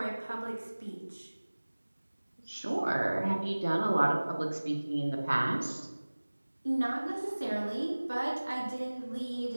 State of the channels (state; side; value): inverted; both; correlation -1.00